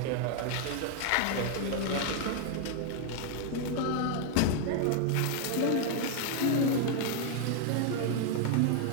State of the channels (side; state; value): both; different; correlation 0.00